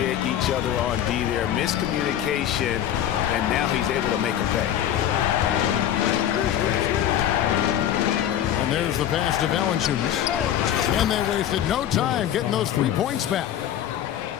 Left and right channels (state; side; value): quieter; right; 10.9 dB